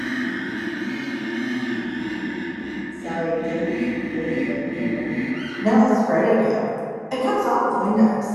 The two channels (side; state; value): both; identical; correlation 1.00